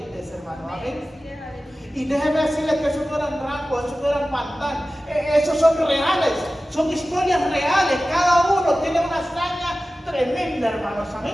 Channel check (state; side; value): normal; both; correlation 0.96